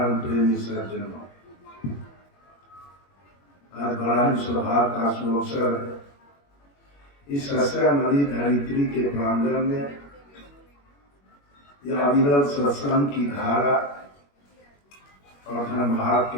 प्रेमी सज्जनों, आज बड़ा ही सौभाग्य का सुअवसर इस सस्यामणि धरित्री के प्रांगण में यह अविरल सत्संग की धारा और धर्मभाग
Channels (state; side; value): late; right; 21 ms